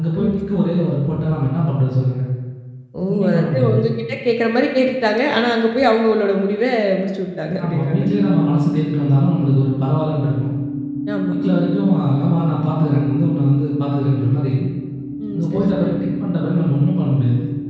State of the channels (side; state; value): both; identical; correlation 1.00